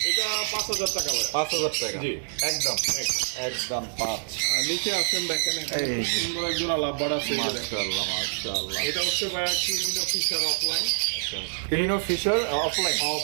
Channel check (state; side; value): silent; left; digital silence